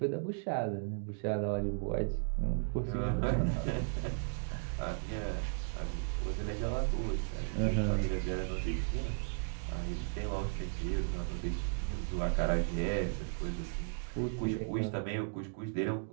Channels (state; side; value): silent; left; digital silence